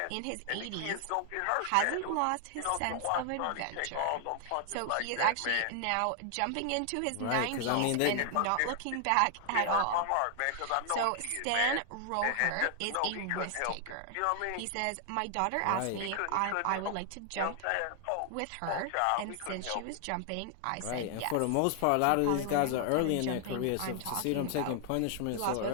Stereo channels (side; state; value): both; different; correlation 0.00